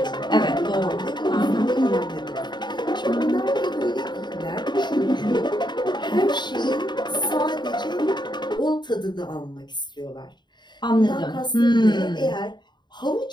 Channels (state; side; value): late; right; 0.21 ms